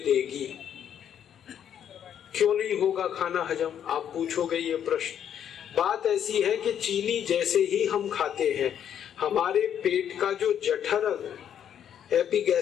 क्यों नहीं होगा खाना हजम, आप पूछोगे ये प्रश्न। बात ऐसी है कि चीनी जैसे ही हम खाते हैं, हमारे पेट का जो जठर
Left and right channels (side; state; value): right; quieter; 9.3 dB